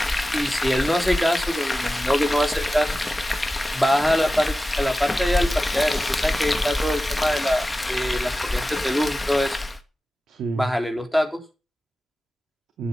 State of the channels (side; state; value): both; normal; correlation 0.94